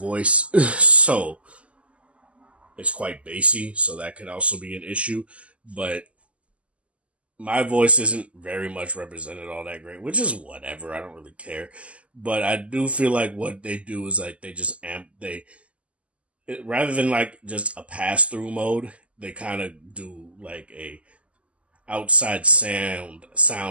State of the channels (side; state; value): left; late; 0.061 ms